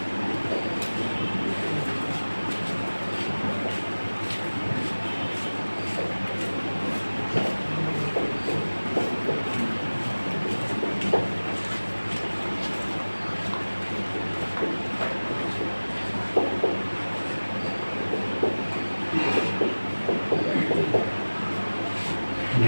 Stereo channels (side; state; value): both; inverted; correlation -1.00